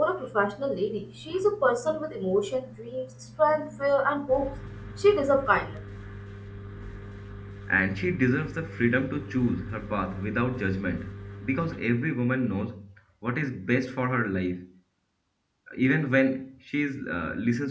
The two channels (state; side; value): identical; both; correlation 1.00